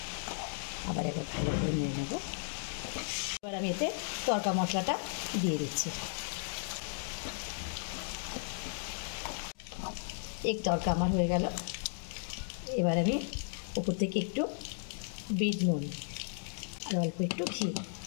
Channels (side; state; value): right; silent; digital silence